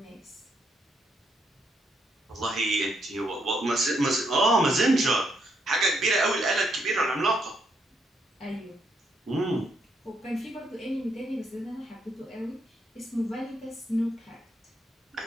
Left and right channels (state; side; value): normal; both; correlation 0.76